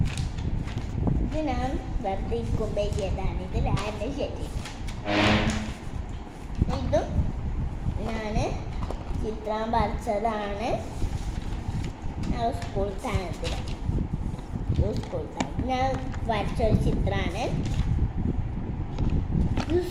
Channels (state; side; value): identical; both; correlation 1.00